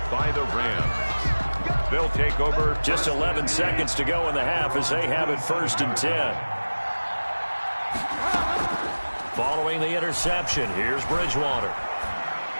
By the Rams. They'll take over. Just 11 seconds to go in the half as they have it 1st and 10. Following the interception, here's Bridgewater.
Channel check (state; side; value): inverted; both; correlation -1.00